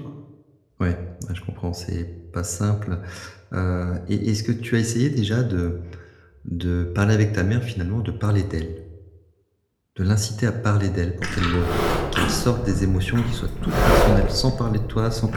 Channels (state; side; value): identical; both; correlation 1.00